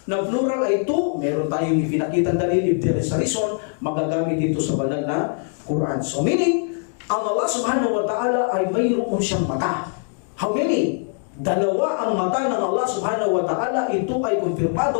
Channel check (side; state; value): right; silent; 60 dB below the other